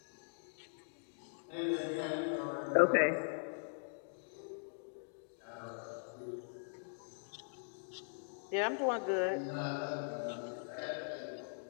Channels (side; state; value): right; silent; digital silence